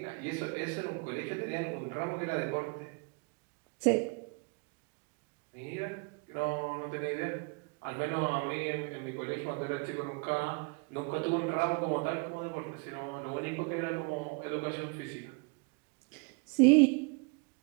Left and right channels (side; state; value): left; quieter; 32.5 dB